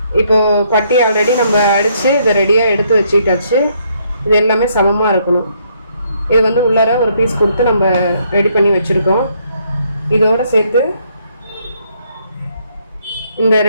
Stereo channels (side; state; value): both; inverted; correlation -0.70